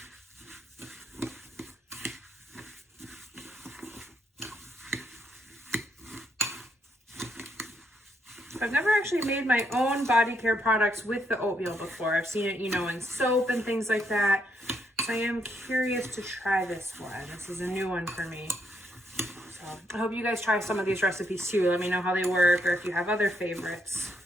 I've never actually made my own body care products with the oatmeal before. I've seen it, you know, in soap and things like that. So I am curious to try this one. This is a new one for me. So I hope you guys try some of these recipes too. Let me know how they work or if you have other favorites.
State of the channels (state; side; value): normal; both; correlation 0.75